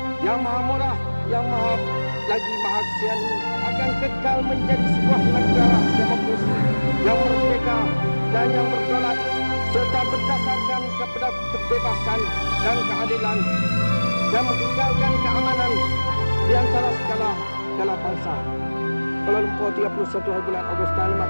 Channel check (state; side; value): inverted; both; correlation -1.00